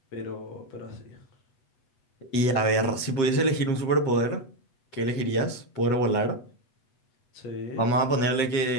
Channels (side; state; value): right; late; 8.1 ms